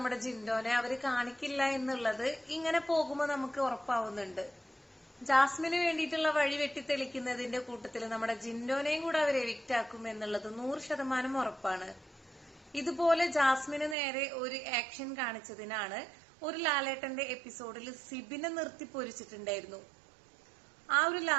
ജിൻഡോനെ അവര് കാണിക്കില്ല എന്നുള്ളത് ഇങ്ങനെ പോകുമ്പോ നമുക്ക് ഉറപ്പാവുന്നുണ്ട്. ജാസ്മിന് വേണ്ടിയിട്ടുള്ള വഴി വെട്ടിത്തെളിക്കുന്നതിന്റെ കൂട്ടത്തിൽ നമ്മുടെ ജിൻഡോനെയും കൂടെ അവർ എവിക്റ്റ് ആക്കും എന്നുള്ളത് 100% ഉറപ്പാണ്. ഇതുപോലെ ജാസ്മിന് നേരെ ഒരു ആക്ഷൻ കാണിച്ചതിനാണ് ഒരു ലാലേട്ടന്റെ എപ്പിസോഡിൽ സിബിനെ നിർത്തി പൊരിച്ചിട്ടുണ്ടായിരുന്നു. ആ ഒരു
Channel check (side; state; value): left; drops out; at 14.0 s